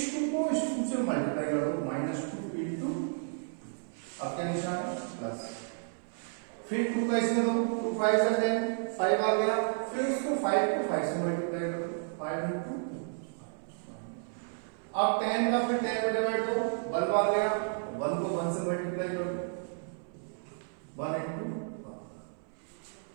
2 को इस 2 से मल्टीप्लाई कर दो, -2 इंटू, अब क्या निशान है? प्लस। फिर 2 का इसमें दो, 2 5 से 10, 5 आ गया। फिर इसको 5 को 5 से मल्टीप्लाई कर दो, 5 इंटू। अब 10 का फिर 10 में डिवाइड दो, 1 बार गया, 1 को 1 से मल्टीप्लाई कर दो, 1 इंटू 1।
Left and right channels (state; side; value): silent; left; 56 dB below the other